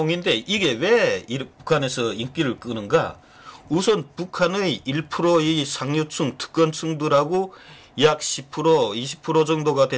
이게 왜 북한에서 인기를 끄는가? 우선 북한의 1%의 상류층, 특권층들하고 약 10%, 20% 정도가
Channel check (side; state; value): both; identical; correlation 1.00